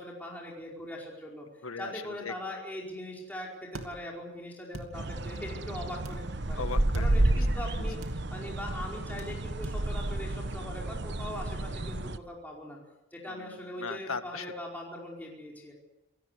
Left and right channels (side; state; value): both; normal; correlation 0.80